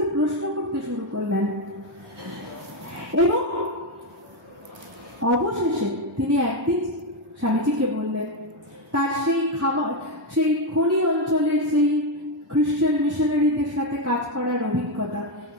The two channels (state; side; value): normal; both; correlation 0.06